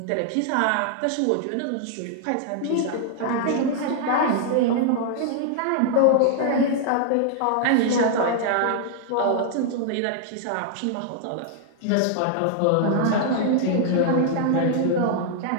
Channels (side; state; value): both; different; correlation -0.01